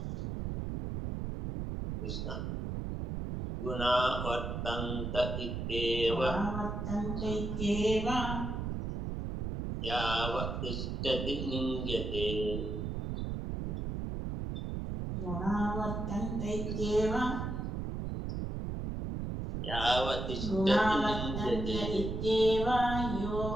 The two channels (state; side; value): noise; right; rumble, 3 dB below the sound